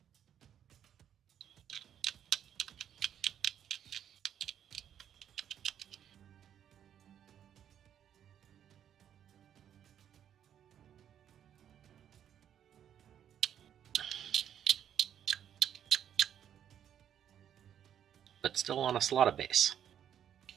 But still on a slotted base.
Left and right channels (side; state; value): left; quieter; 9.6 dB